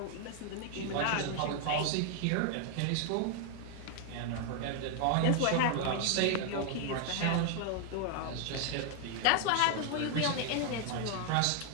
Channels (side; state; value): both; different; correlation 0.00